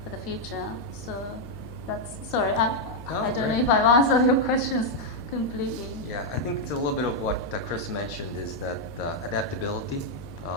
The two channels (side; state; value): left; noise; hum, 17 dB below the sound